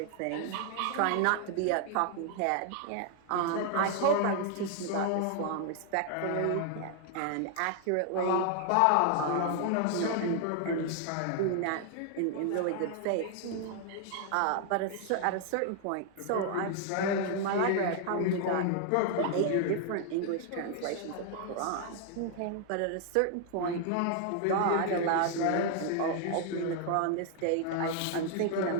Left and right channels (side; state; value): both; different; correlation 0.00